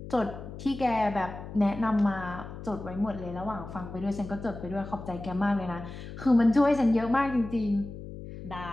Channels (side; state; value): left; noise; hum, 11 dB below the sound